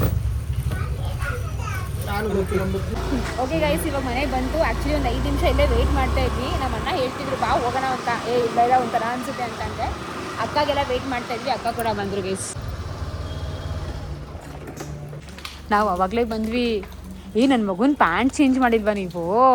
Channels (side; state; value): both; identical; correlation 1.00